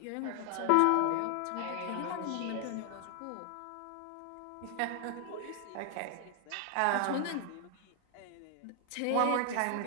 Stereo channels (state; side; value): different; both; correlation 0.00